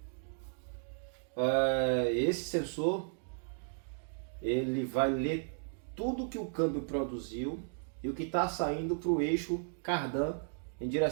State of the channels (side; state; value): left; silent; digital silence